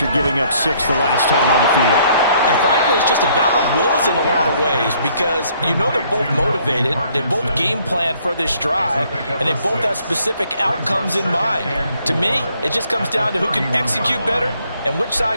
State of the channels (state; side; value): inverted; both; correlation -0.64